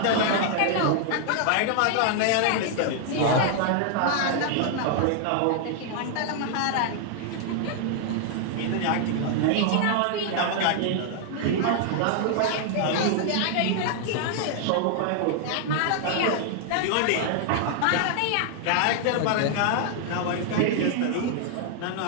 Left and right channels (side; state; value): both; different; correlation 0.00